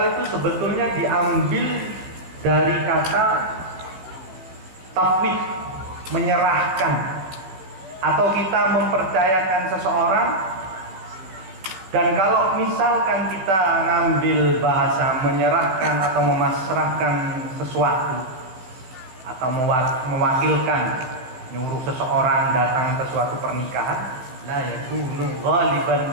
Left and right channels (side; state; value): left; late; 15 ms